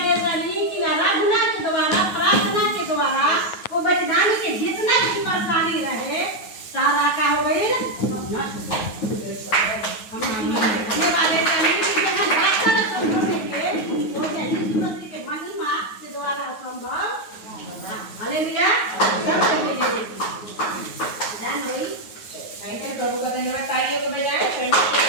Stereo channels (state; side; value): late; right; 9.4 ms